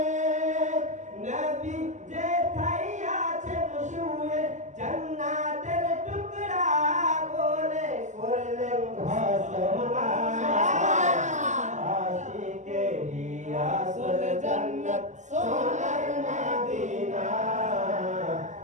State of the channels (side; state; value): left; late; 0.34 ms